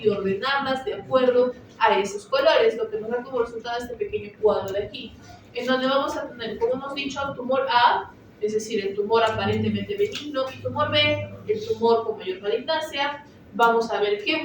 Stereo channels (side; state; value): both; identical; correlation 1.00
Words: ordenarlas de acuerdo a esos colores, lo que nos da como resultado este pequeño cuadro de aquí, en donde vamos a tener, como hemos dicho, tumor A, es decir, el tumor aparentemente benigno, y tumor B, el tumor con mayor malignancia. Vamos a ver qué